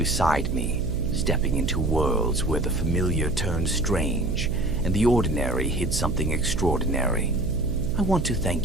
me, stepping into worlds where the familiar turned strange, and the ordinary hid something extraordinary. I want to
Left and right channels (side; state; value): right; noise; hum, 3 dB below the sound